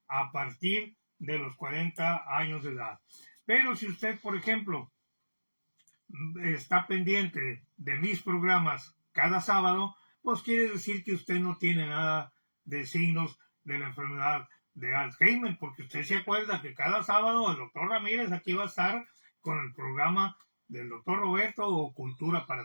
a partir de los 40 años de edad. Pero si usted, por ejemplo, está pendiente de mis programas cada sábado, pues quiere decir que usted no tiene nada de signos de la enfermedad de Alzheimer, porque usted se acuerda que cada sábado el doctor Ramírez aquí va a estar con el programa del doctor Roberto o Cultura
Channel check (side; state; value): both; inverted; correlation -1.00